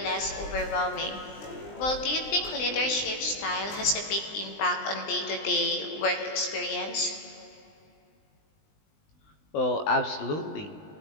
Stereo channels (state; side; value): late; right; 20 ms